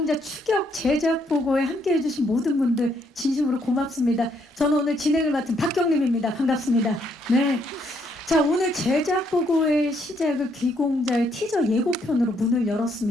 추격 제작 보고에 함께 해주신 모든 분들 진심으로 고맙습니다. 저는 오늘 진행을 맡은 박경림입니다. 반갑습니다. 네. 자, 오늘 제작 보고의 시작을 귀공자의 티저 예고편으로 문을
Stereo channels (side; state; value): both; normal; correlation 0.72